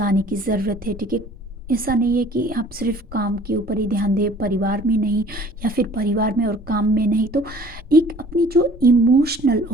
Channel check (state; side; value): normal; both; correlation 0.51